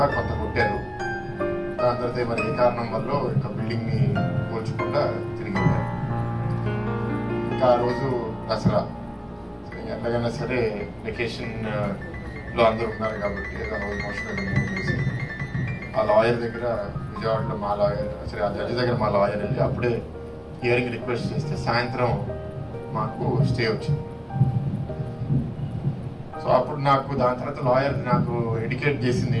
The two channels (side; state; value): both; identical; correlation 1.00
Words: కొంత కొట్టారు. దాని తర్వాత మరి ఏ కారణం వల్ల ఇంకా బిల్డింగ్ని కూల్చకుండా తిరిగి వెళ్ళారు. ఇంకా ఆ రోజు దసరా, ఎలాగైనా సరే వెకేషన్లో అందరూ ఉన్నారు కాబట్టి ఏదో రోజు మోషన్ మూవ్ చేసి ఆ లాయర్ దగ్గర, విజయవాడలో మా లాయర్, సరే ఆ జడ్జి దగ్గర మా లాయర్ వెళ్ళి అప్పుడే హియరింగ్ రిక్వెస్ట్ చేస్తే సాయంత్రం మాకు స్టే వచ్చింది. సో అప్పుడు నాకు దాని తర్వాత లాయర్ నాకు ఎడ్యుకేట్ చేసింది